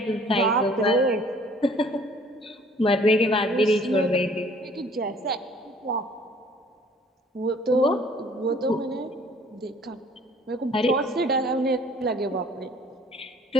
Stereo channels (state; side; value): normal; both; correlation 0.55